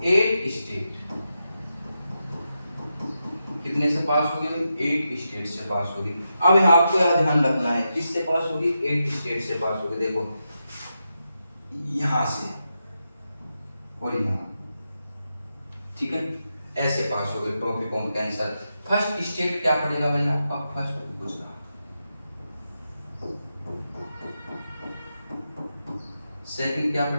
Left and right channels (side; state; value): both; inverted; correlation -0.87